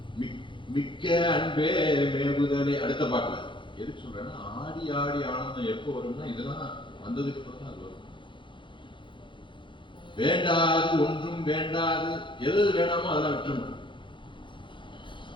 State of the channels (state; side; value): late; right; 0.24 ms